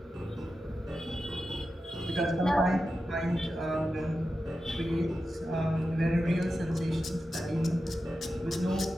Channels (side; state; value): both; normal; correlation 0.91